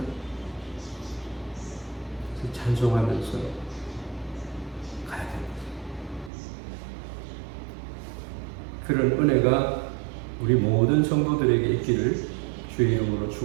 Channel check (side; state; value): left; drops out; at 6.3 s